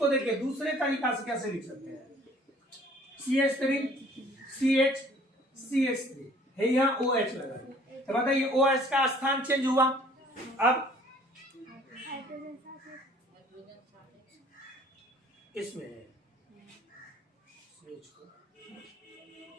देखिए दूसरे तरीका से कैसे लिख सकते हैं, CH3 CH CH3 है, यहाँ OH लगा। तो बताइए OH का स्थान चेंज हुआ। अब इसमें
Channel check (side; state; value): both; normal; correlation 0.55